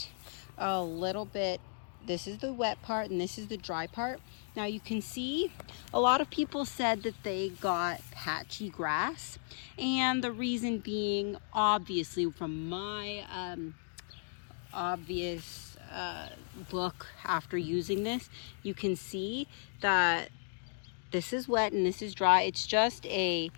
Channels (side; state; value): right; silent; digital silence